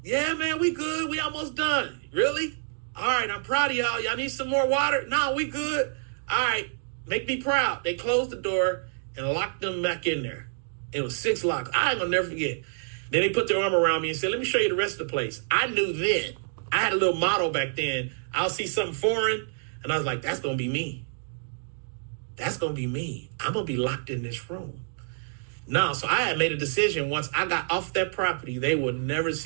Yeah, man, we good. We almost done. Really? All right, I'm proud of y'all. Y'all need some more water? No, we good. All right, make me proud. They closed the door and locked them back in there. It was 6 locks. I ain't gonna never forget. Then they put their arm around me and said, let me show you the rest of the place. I knew then. I had a little motto back then. I'll see something foreign, and I was like, that's gonna be me. That's gonna be me. I'm gonna be locked in this room. No, so I had made a decision once I got off that property, they would never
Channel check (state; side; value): silent; left; digital silence